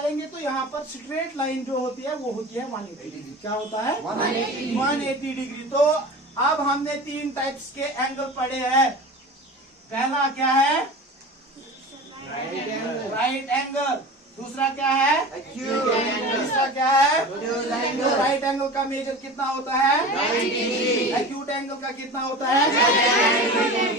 तो यहाँ पर स्ट्रेट लाइन जो होती है वो होती है 180 डिग्री। क्या होता है? 180 डिग्री। तो अब हमने 3 टाइप्स के एंगल पढ़े हैं। पहला क्या है? Right angle. Right angle. दूसरा क्या है? Acute angle. तीसरा क्या है? Acute angle. राइट एंगल का मेजर कितना होता है? 90 डिग्री। एक्यूट एंगल का कितना होता है?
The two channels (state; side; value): normal; both; correlation 0.34